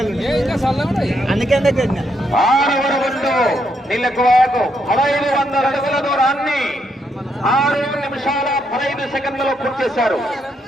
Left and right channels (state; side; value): normal; both; correlation 0.77